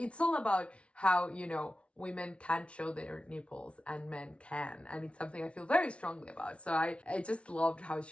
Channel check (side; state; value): right; late; 0.061 ms